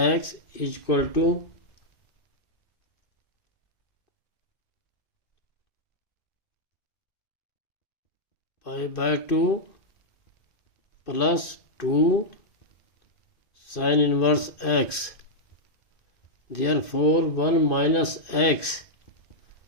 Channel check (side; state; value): right; late; 2.5 ms